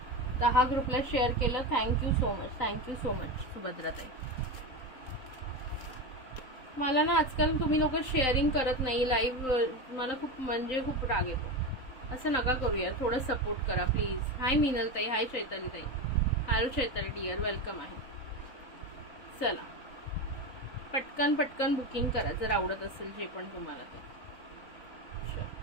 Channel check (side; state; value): right; late; 3.9 ms